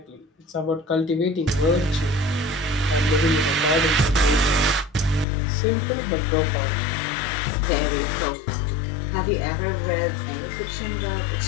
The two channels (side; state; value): right; drops out; at 5.2 s